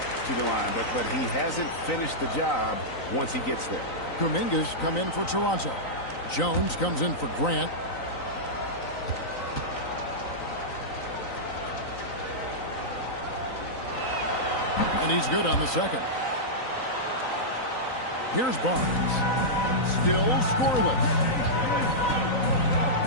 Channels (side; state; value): right; late; 3.9 ms